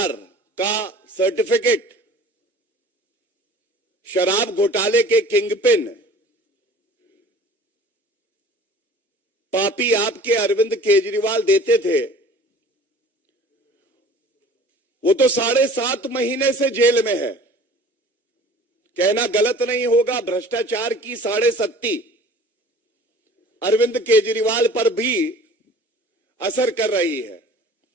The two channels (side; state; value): both; normal; correlation 0.46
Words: का सर्टिफिकेट शराब घोटाले के किंगपिन पापी आपके अरविंद केजरीवाल देते थे, वो तो 7.5 महीने से जेल में है। कहना गलत नहीं होगा, भ्रष्टाचार की 7.5 अरविंद केजरीवाल पर भी असर कर रही है।